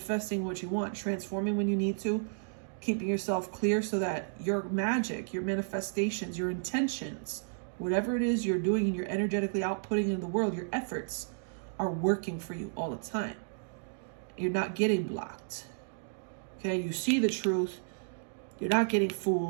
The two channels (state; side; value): silent; left; digital silence